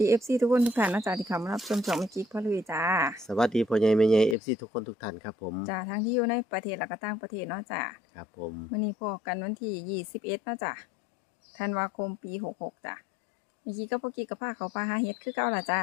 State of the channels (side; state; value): right; drops out; at 4.4 s